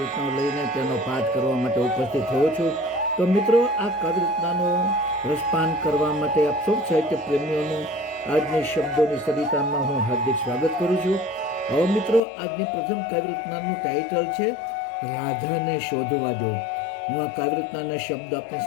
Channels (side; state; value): right; drops out; at 12.2 s